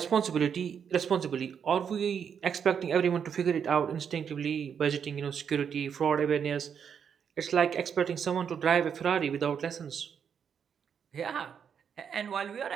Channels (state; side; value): quieter; left; 7.5 dB